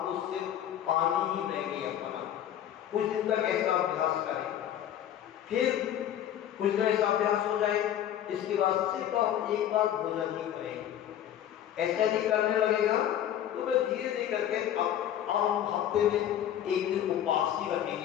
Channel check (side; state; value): right; quieter; 10.8 dB